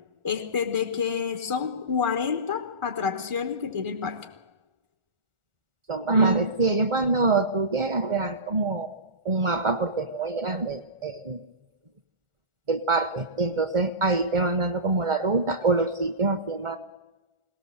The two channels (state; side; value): late; left; 1.4 ms